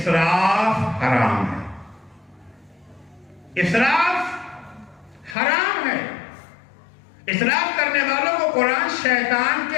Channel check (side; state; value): right; drops out; at 5.4 s